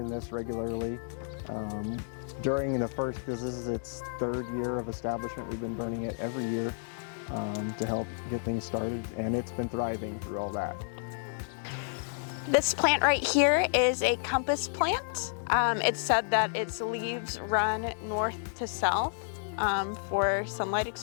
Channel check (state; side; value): silent; right; digital silence